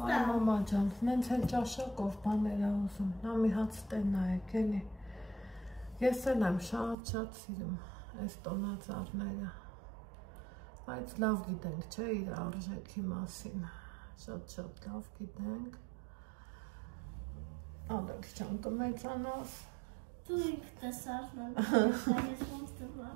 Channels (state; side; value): drops out; left; at 7.0 s